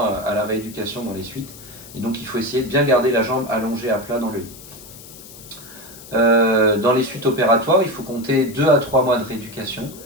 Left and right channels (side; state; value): left; noise; hiss, 18 dB below the sound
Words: à la rééducation dans les suites. Et donc il faut essayer de bien garder la jambe allongée à plat dans le lit. Dans les suites opératoires, il faut compter 2 à 3 mois de rééducation.